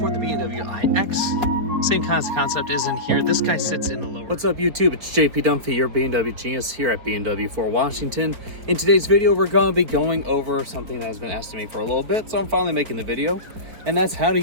for the BMW iX, same kind of concept is in here. This guy sits in the lower. What's up YouTube? It's JP Dunphy, your BMW genius here at BMW for Washington. In today's video, we're going to be going over something that has been asked of me for a little bit, so I'm finally making the video. And that's how to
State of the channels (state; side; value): late; left; 4.3 ms